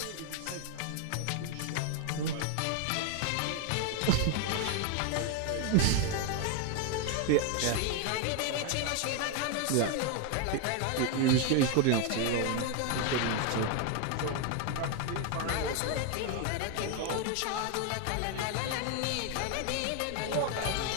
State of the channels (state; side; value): different; both; correlation 0.01